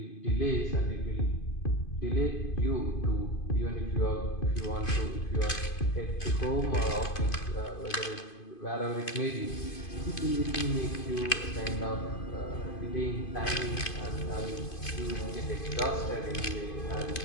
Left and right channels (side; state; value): right; late; 2.5 ms